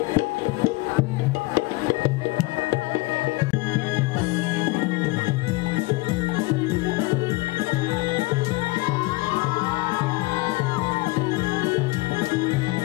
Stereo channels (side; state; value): right; quieter; 22.9 dB